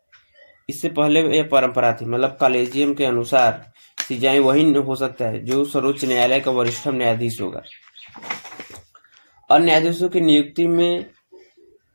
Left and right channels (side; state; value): both; inverted; correlation -1.00